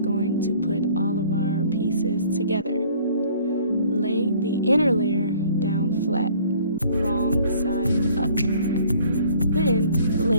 going to put all of our pieces together. Lay the inner layer down flat, wrong side up. Then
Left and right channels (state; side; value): inverted; both; correlation -0.55